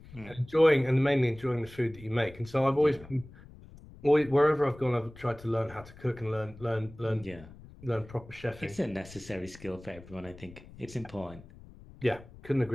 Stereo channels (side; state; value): left; noise; rumble, 19 dB below the sound